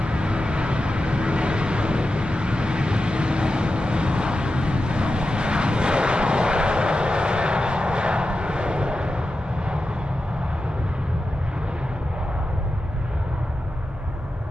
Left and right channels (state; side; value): normal; both; correlation 0.90